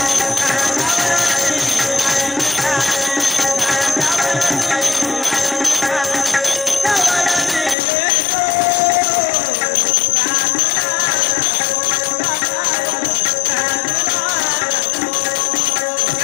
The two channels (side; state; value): right; drops out; at 7.8 s